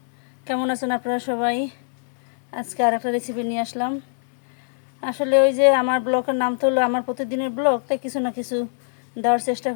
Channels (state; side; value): silent; right; 64 dB below the other